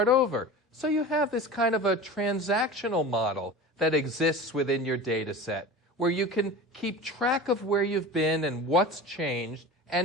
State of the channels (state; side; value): normal; both; correlation 0.34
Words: over. So you have this kind of a transactional model that exists within your data set, where you can keep track of where you've been and what's changed,